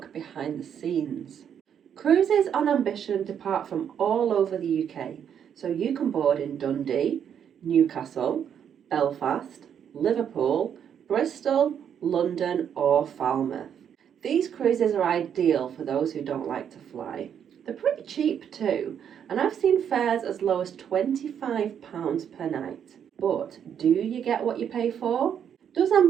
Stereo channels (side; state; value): left; quieter; 8.5 dB